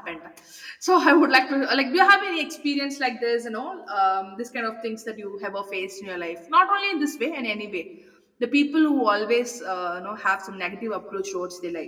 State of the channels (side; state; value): both; identical; correlation 1.00